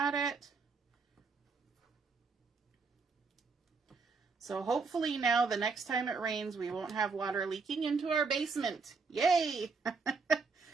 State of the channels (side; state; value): left; quieter; 4.7 dB